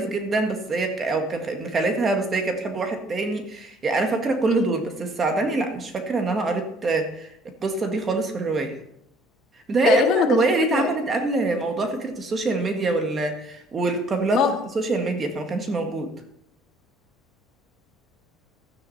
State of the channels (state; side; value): normal; both; correlation 0.59